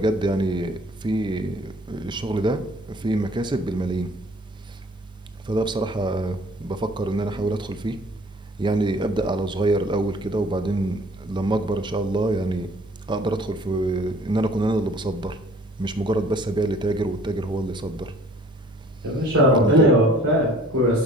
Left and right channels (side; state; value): both; normal; correlation 0.54